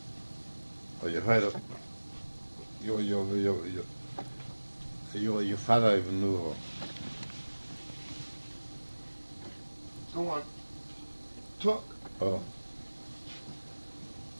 or you heard of your father even knew her. Go on. Talk. Oh.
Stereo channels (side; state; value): both; inverted; correlation -1.00